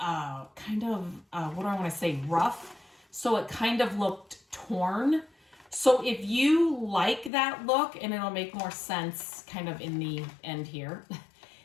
kind of, what do I want to say, rough. So it kind of looked torn. So if you like that look, and it'll make more sense kind of in the end here.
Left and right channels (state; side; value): drops out; right; at 7.3 s